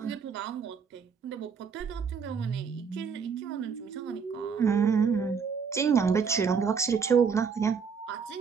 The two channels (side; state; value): left; quieter; 6.1 dB